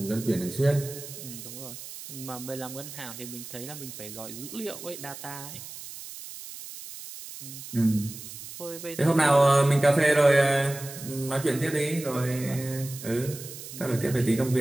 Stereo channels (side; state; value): right; noise; hiss, 12 dB below the sound